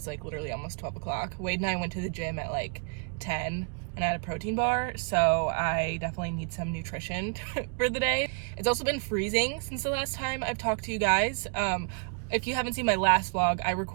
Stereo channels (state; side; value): quieter; left; 36.3 dB